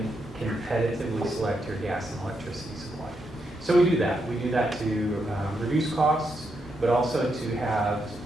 competitively select your gas and electricity supply. So we do that. We do that to reduce costs, but also to have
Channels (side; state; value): both; normal; correlation 0.81